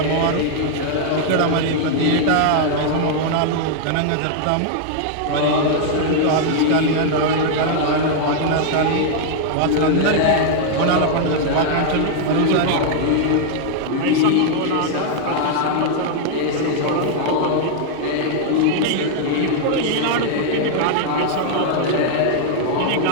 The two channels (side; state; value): both; different; correlation 0.00